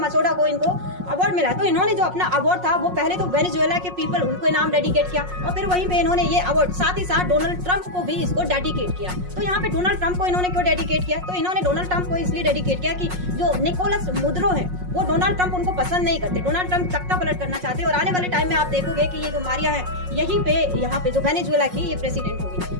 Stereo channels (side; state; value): left; late; 5.5 ms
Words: को इनको अवार्ड मिला तो इन्होंने जो अपना अवार्ड था वो पहले तो वेनेजुएला के पीपल उनको नाम डेडिकेट किया और फिर वहीं पे इन्होंने ये अवार्ड साथ ही साथ डोनाल्ड ट्रंप को भी इसको डेडिकेट किया। तो यहाँ पे डोनाल्ड ट्रंप को इन्होंने क्यों डेडिकेट किया, तो इन्होंने डोनाल्ड ट्रंप को इसलिए डेडिकेट किया कि जो निकोलस मुद्रो है वो डोनाल्ड ट्रंप उनको पसंद नहीं करते। डोनाल्ड ट्रंप तख्ता पलट करना चाहते हैं और आने वाले टाइम में आप देखोगे कि ये जो मारिया है यहीं पे यहाँ पे जो वेनेजुएला की ये प्रेसिडेंट होगी।